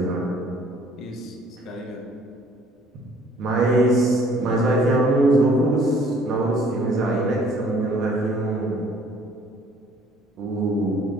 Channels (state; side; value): normal; both; correlation 0.58